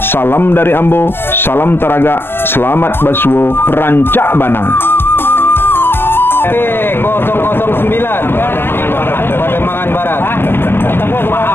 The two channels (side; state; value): right; late; 0.11 ms